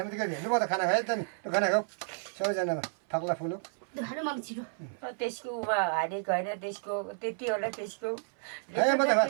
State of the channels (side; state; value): left; silent; 57 dB below the other